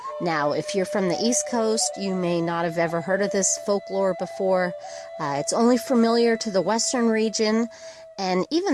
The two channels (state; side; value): identical; both; correlation 1.00